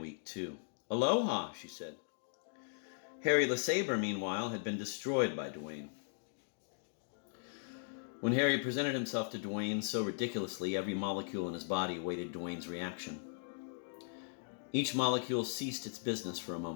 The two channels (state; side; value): silent; right; digital silence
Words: too. Aloha, she said. Harry LeSabre, meanwhile, had been destroyed by Dwayne. When Harry presented himself to Dwayne so ridiculously, every molecule in his body awaited Dwayne's reaction. Each molecule ceased its business for a